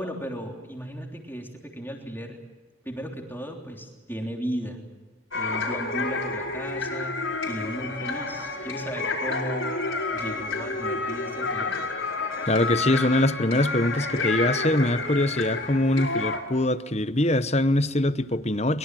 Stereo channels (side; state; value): both; normal; correlation 0.49